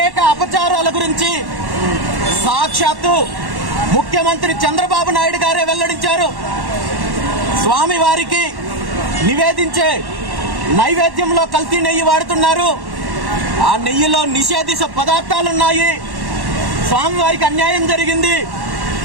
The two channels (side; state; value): left; late; 1.1 ms